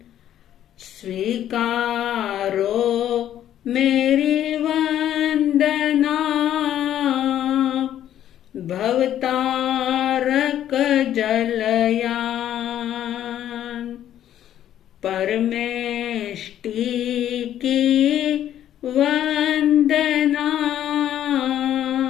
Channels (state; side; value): quieter; right; 11.3 dB